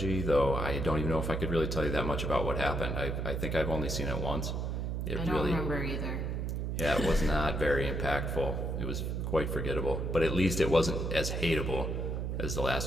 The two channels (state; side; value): noise; right; hum, 2 dB below the sound